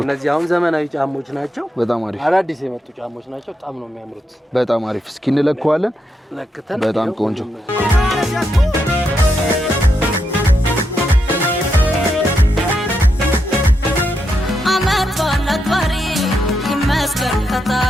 እነዚህ አሁን ዘመናዊ ጫሞች ናቸው። በጣም አሪፍ አዳዲስ የመጡ ጫሞች ናቸው። በጣም ነው የሚያምሩት። በጣም አሪፍ። እስኪ እንለካዋለን። በጣም ቆንጆ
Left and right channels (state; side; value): normal; both; correlation 0.83